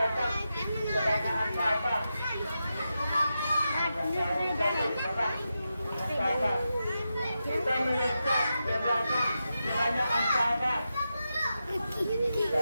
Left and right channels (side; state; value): both; inverted; correlation -0.89